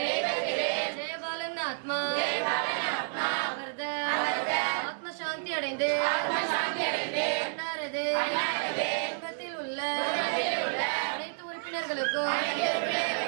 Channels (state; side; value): silent; left; digital silence